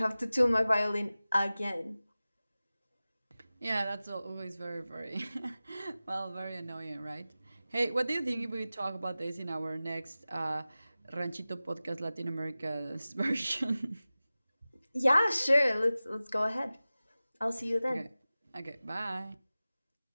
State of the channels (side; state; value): both; inverted; correlation -0.96